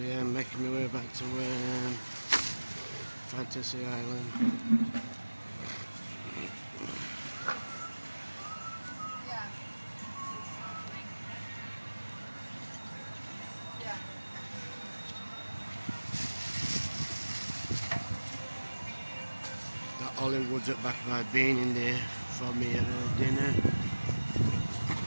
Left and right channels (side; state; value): both; inverted; correlation -1.00